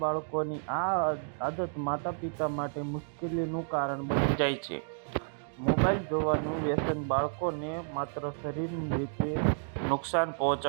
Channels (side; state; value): left; silent; digital silence